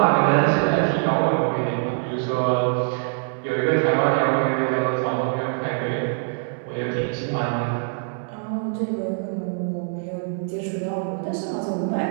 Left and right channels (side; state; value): left; silent; 63 dB below the other